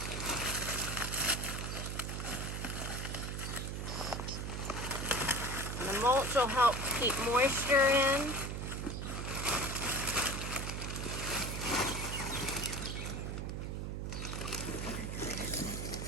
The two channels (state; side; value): noise; right; hum, 4 dB below the sound